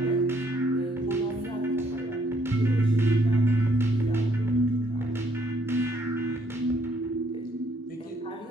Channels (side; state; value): both; normal; correlation 0.68